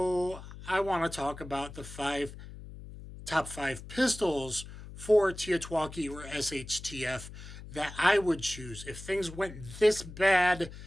I want to talk about the top five pistols for TEOTWAWKI or SHTF that I would choose if things went this bad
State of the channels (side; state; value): left; noise; hum, 14 dB below the sound